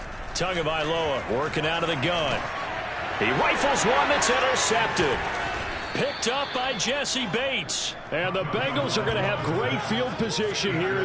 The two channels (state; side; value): identical; both; correlation 1.00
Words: Tagovailoa working out of the gun. He rifles one that's intercepted. Picked up by Jesse Bates. And the Bengals are going to have great field position here